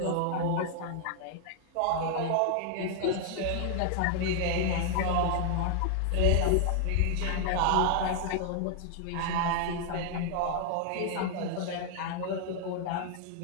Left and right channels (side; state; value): both; different; correlation 0.00